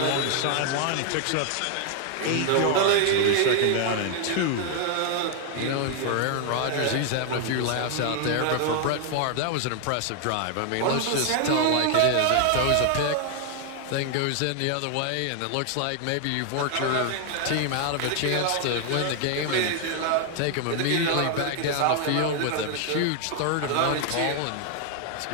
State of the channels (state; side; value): different; both; correlation 0.00